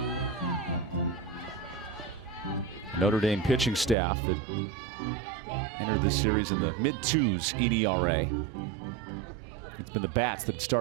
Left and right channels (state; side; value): drops out; left; at 4.0 s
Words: Notre Dame pitching staff that entered this series in the mid-2s in ERA. It's been the bats that